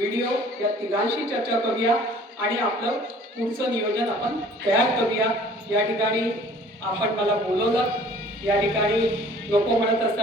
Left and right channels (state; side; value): normal; both; correlation 0.51